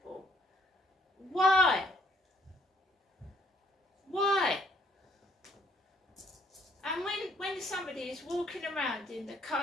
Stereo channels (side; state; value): both; normal; correlation 0.66